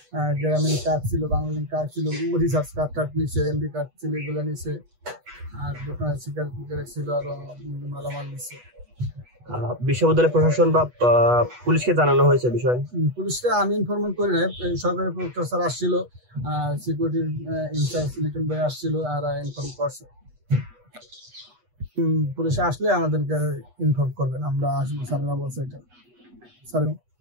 গ্রামীণ কার্ড ছিল, বাংলালিন কার্ড ছিল, রিচার্জ কার্ড নিচে, এমবি কার্ড ছিল, এগুলো নিচে। আর দোকানে সিগারেট ছিল, আরো মালামাল নিচে। বিশ্ববিদ্যালয় প্রশাসন বা পুলিশকে জানানো হয়েছে বিষয়? পুলিশকে আমি ইনফরমেশন করি নাই। সরকারি প্রক্টর স্যার আসছিল, সিকিউরিটির ইনচার্জ লিটন ভাই আসছিল, আর ইনফর্ম করছে। পুলিশে আসলে আমাদেরকে ইনফর্ম করবেন, আমরা আসবো। স্যাররা বলছে এটা।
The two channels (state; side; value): late; left; 8.2 ms